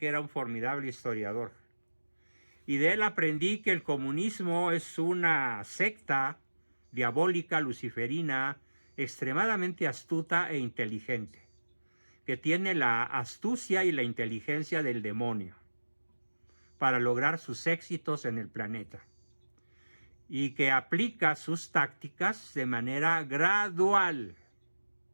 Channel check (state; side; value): inverted; both; correlation -1.00